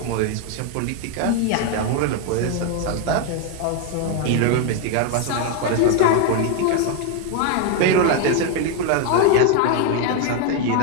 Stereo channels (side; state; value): both; different; correlation 0.01